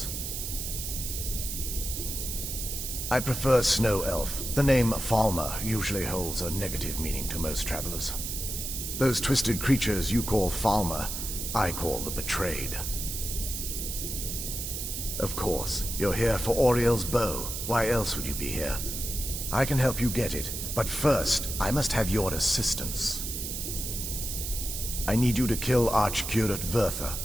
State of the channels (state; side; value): noise; right; hiss, 5 dB below the sound